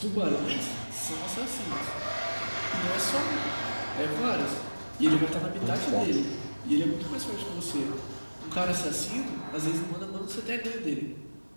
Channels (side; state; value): both; inverted; correlation -1.00